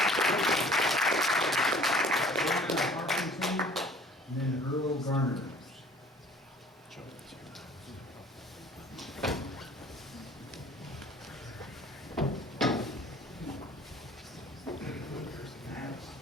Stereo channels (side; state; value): both; normal; correlation 0.50